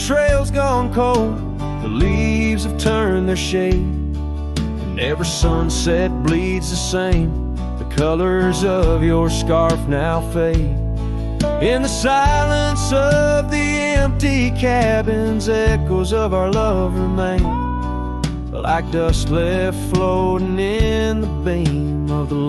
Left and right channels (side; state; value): both; identical; correlation 1.00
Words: gone cold, the leaves have turned their shade, and every sunset bleeds the same. The colors of your scarf now fade. In the silence of the empty cabins, echoes of our love remain, like dust left floating in the beam of the